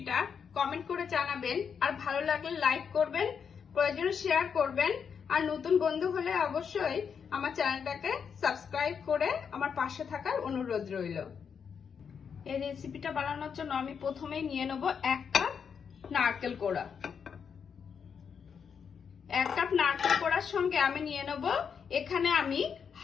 কমেন্ট করে জানাবেন, আর ভালো লাগলে লাইক করবেন, প্রয়োজনে শেয়ার করবেন, আর নতুন বন্ধু হলে অবশ্যই আমার চ্যানেলটাকে সাবস্ক্রাইব করে আমার পাশে থাকার অনুরোধ রইল। এই রেসিপিটা বানানোর জন্য আমি প্রথমেই নিয়ে নেব 1 কাপ নারকেল কোড়া। 1 কাপ নারকেল কোড়ার সঙ্গে আমি নিয়ে নেব এখানে আমি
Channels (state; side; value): quieter; right; 6.8 dB